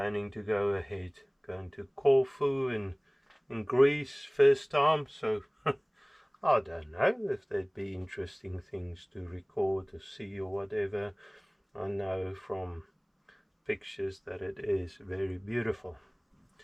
to go ahead, going to Corfu in Greece first time, so I don't know if there'd be interesting things to record or see or whatever. I know from pictures that it is very beautiful.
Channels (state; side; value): identical; both; correlation 1.00